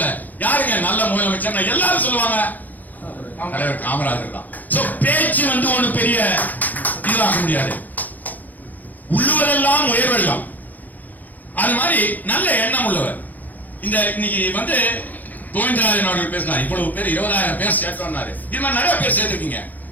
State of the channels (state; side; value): late; right; 0.082 ms